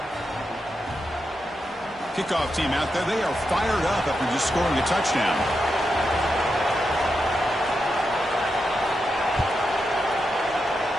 Kickoff team out there, they are fired up after just scoring a touchdown.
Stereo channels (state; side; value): normal; both; correlation 0.86